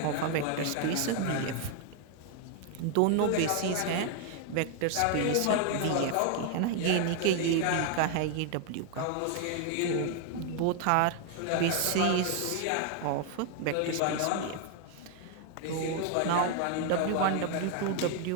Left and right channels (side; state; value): both; different; correlation 0.00